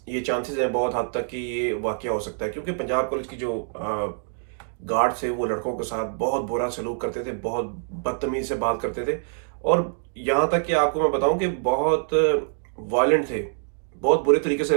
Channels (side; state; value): left; silent; digital silence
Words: ये चांसेस हैं बहुत हद तक कि ये वाक़या हो सकता है, क्योंकि पंजाब कॉलेज की जो गार्ड थे वो लड़कों के साथ बहुत बुरा सलूक करते थे, बहुत बदतमीज़ी से बात करते थे, और यहाँ तक कि आपको मैं बताऊँ कि बहुत वायलेंट थे, बहुत बुरे तरीके